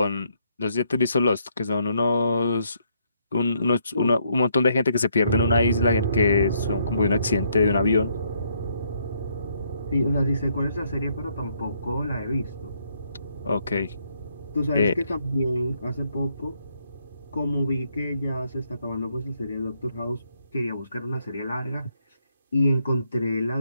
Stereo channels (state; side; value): inverted; both; correlation -0.73